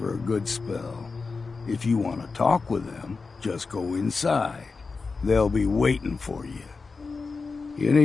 a good spell. If you want to talk with them, just go inside. They'll be waiting for you. You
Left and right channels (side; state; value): right; quieter; 4.4 dB